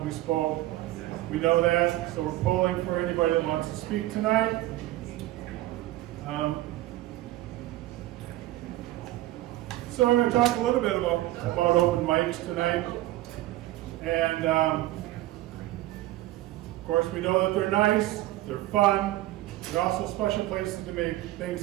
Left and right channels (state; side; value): quieter; left; 16.4 dB